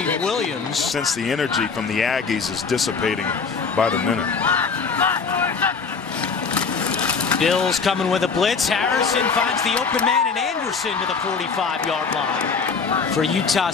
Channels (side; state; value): right; quieter; 5.2 dB